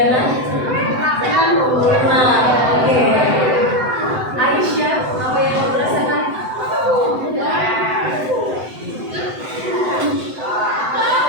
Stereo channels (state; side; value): late; left; 7.9 ms